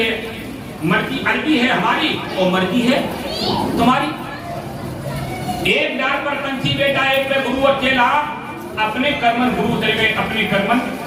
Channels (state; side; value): identical; both; correlation 1.00